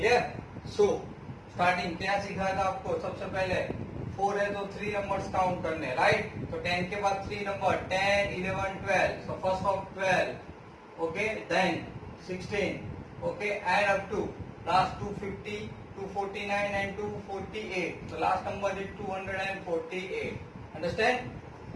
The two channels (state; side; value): identical; both; correlation 1.00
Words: So starting क्या सीखा था आपको? सबसे पहले 4 है तो 3 नंबर्स काउंट करने, राइट। तो 10 के बाद 3 number 10, 11, 12. So first of 12, okay, then 16, okay, add up to last 250, 249 and 248. So last number is 248. Understand?